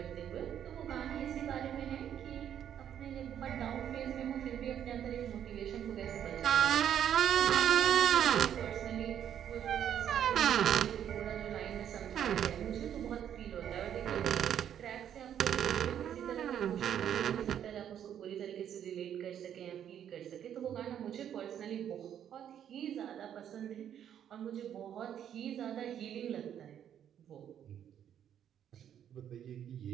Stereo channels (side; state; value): left; quieter; 9.7 dB